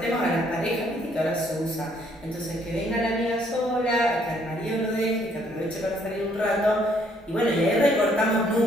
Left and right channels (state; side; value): normal; both; correlation 0.66